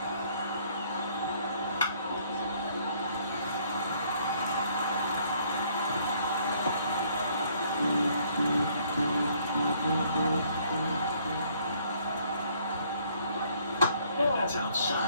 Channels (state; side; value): inverted; both; correlation -0.64